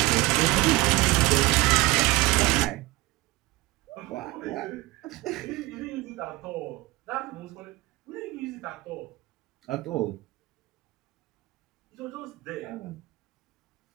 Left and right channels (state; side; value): quieter; left; 20.6 dB